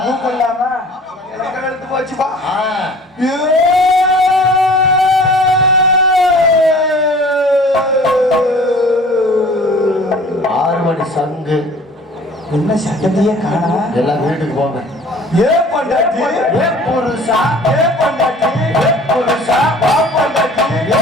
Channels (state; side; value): normal; both; correlation 0.48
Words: கூப்பிடலாமா எனக்கு எடுத்து போச்சுப்பா ஆறு மணி சங்கு என்ன சட்டத்தையே காணா எல்லாம் வீட்டுக்கு போங்க. ஏ பண்டாட்டி ஏ புருஷா, ஏ பண்டாட்டி ஏ புருஷா, வா பண்டாட்டி ஏ